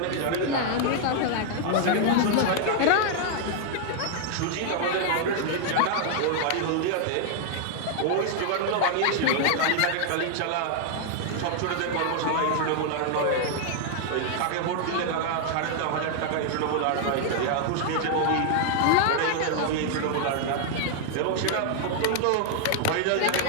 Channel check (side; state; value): both; different; correlation 0.00